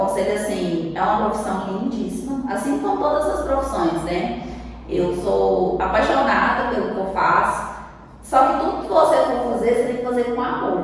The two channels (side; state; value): both; identical; correlation 1.00